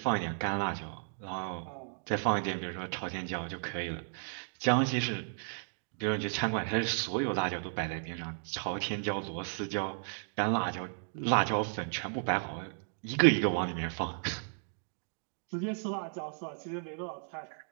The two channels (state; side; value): silent; left; 55 dB below the other